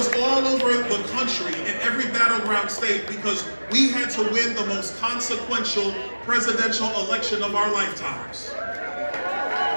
all over the country in every battleground state because we had to win the most consequential presidential election of our lifetimes.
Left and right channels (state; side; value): inverted; both; correlation -1.00